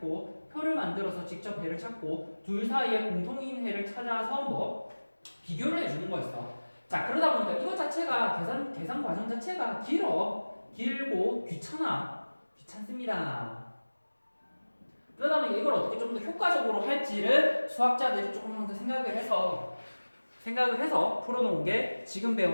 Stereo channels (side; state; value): both; inverted; correlation -1.00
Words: 둘 사이에 공통인 해를 찾아서 뭐 비교를 해주는 거였어. 자, 그러다 보니까 이거 자체가 계산 과정 자체가 길고 귀찮습니다. 그러다 보니 이걸 어떻게 좀 더 효과적으로 할지를 수학자들이 조금 더 생각을 해서 풀어놓은 게 지금